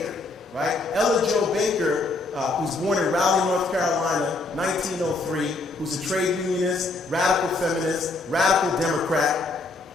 right? Ella Jo Baker, who's born in Raleigh, North Carolina, 1903, who's a trade unionist, radical feminist, radical Democrat,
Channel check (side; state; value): right; quieter; 3.3 dB